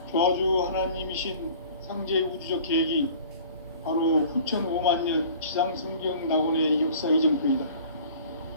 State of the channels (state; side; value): inverted; both; correlation -0.47